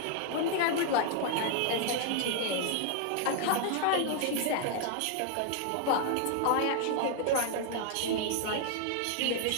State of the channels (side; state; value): both; different; correlation 0.00